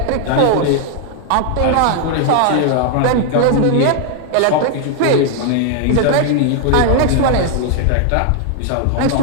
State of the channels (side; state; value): both; different; correlation 0.00